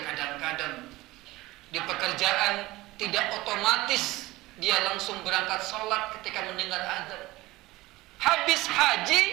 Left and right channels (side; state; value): left; quieter; 19.3 dB